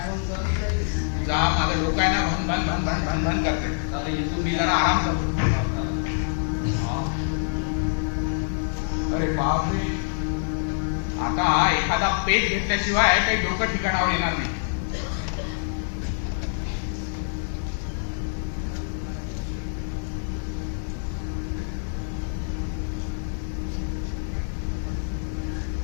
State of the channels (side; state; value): right; silent; 61 dB below the other